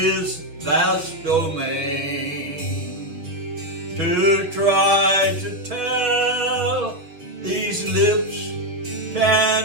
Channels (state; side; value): late; left; 6.3 ms